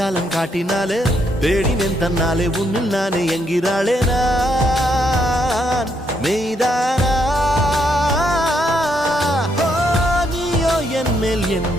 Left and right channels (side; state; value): both; normal; correlation 0.75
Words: காட்டினாலே தேடினேன் தன்னாலே உன்னில் நானே என்கிறாளே நான் மெய்தானா என் மேல்